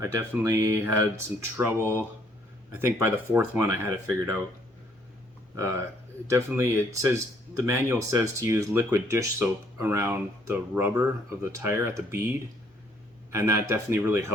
definitely had some trouble. I think by the 4th one I had it figured out. It says, the manual says to use liquid dish soap around the rubber of the tire at the bead, and that definitely really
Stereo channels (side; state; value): both; normal; correlation 0.65